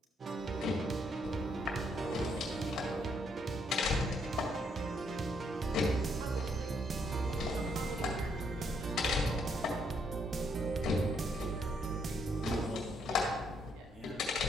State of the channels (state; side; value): normal; both; correlation 0.72